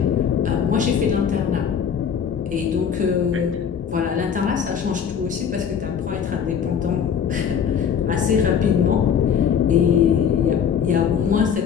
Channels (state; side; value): quieter; right; 7.6 dB